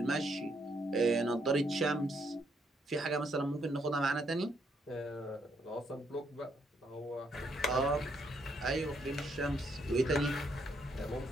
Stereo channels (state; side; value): normal; both; correlation 0.74